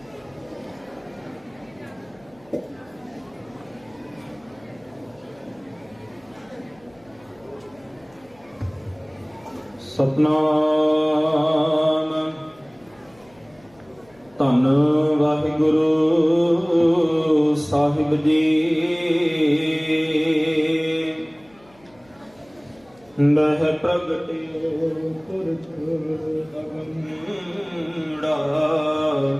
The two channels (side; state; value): left; noise; hum, 29 dB below the sound